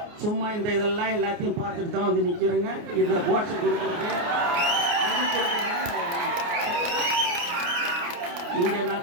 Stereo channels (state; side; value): late; left; 29 ms